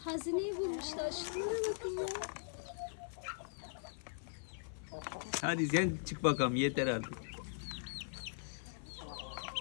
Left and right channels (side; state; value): right; silent; 51 dB below the other